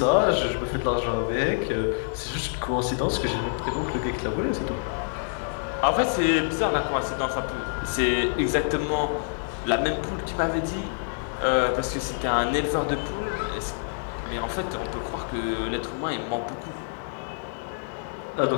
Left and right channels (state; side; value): silent; right; digital silence